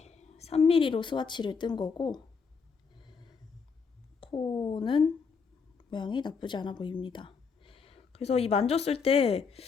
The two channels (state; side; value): quieter; right; 5.5 dB